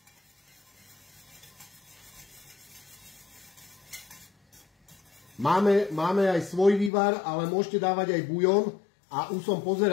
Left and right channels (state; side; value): drops out; right; at 6.9 s